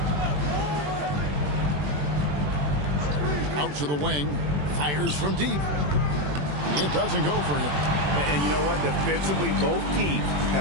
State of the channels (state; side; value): late; left; 21 ms